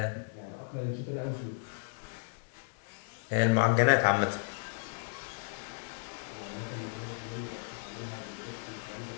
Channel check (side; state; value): right; silent; digital silence